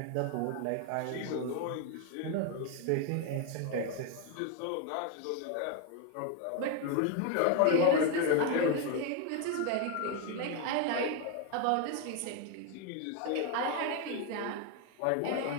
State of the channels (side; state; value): both; different; correlation 0.01